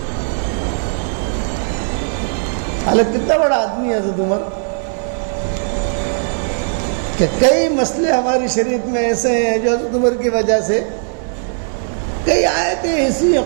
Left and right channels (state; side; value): silent; left; digital silence